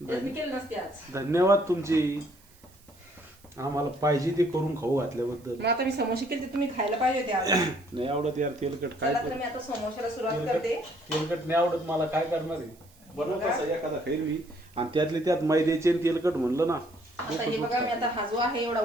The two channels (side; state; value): right; noise; hiss, 28 dB below the sound